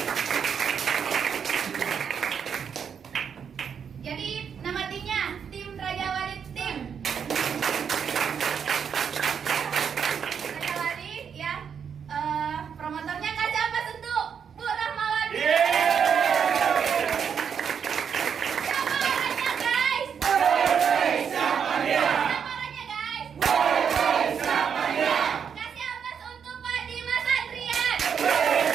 Jadi nama timnya tim Raja Wali Tim. Promotornya kasih apa untuk Bu Rahmawati? Siapa orangnya guys? Siapa orangnya guys? Kasih apa untuk Pak Dimas Adrian?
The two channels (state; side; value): quieter; left; 7.3 dB